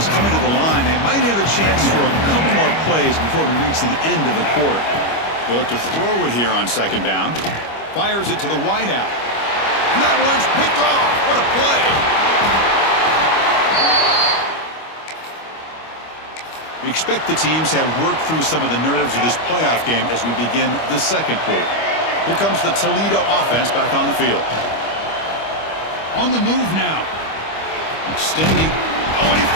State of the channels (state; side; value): late; right; 25 ms